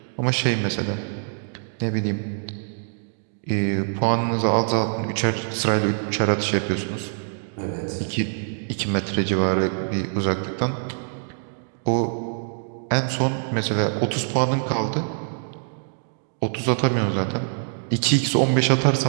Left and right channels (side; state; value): left; silent; digital silence